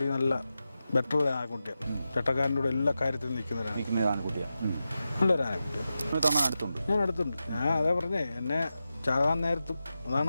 നല്ല ബെറ്റർ ആനക്കുട്ടിയാണ്. ചട്ടക്കാരൻ്റെ കൂടെ എല്ലാ കാര്യത്തിലും നിൽക്കുന്ന ആനക്കുട്ടിയാണ്. നല്ലൊരു ആനക്കുട്ടിയാണ്. അടുത്തുണ്ട്, ഞാൻ അടുത്തുണ്ട്. ഞാൻ അതേ പറഞ്ഞേ, എന്നെ ചാകാൻ നേരത്തും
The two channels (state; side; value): inverted; both; correlation -0.91